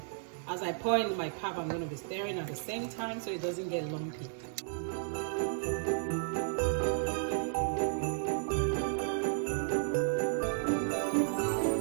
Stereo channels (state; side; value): silent; left; digital silence